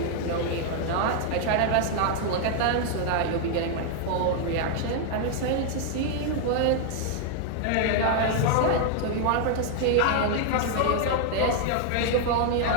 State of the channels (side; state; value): both; different; correlation 0.00